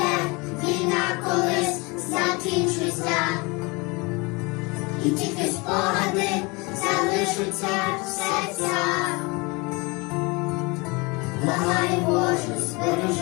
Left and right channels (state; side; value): quieter; right; 27.1 dB